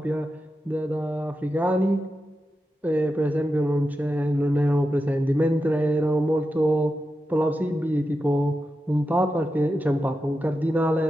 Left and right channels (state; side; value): normal; both; correlation 0.90